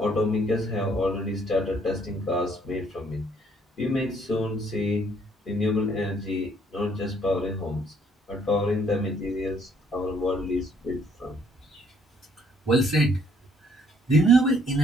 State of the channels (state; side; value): normal; both; correlation 0.65